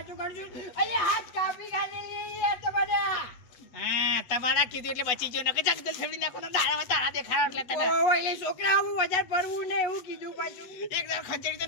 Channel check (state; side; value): late; right; 8.2 ms